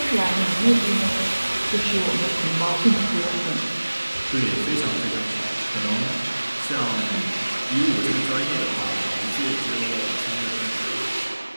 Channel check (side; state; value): both; inverted; correlation -1.00